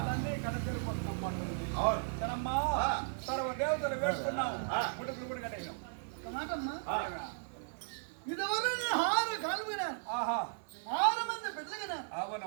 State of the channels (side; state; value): left; silent; 54 dB below the other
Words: కడచేరుకుంటున్నమ్మంటుంది. అవును. కదమ్మా ఆ. సర్వ దేవతలు వేడుకున్నాం, ముడుపులు కూడా కట్టేసాం. ఒక మాటమ్మా, ఆ. ఇదివరకు నేను 6 కాళ్ళు విన్నాను, ఆహా 6 మంది బిడ్డలు విన్నాను.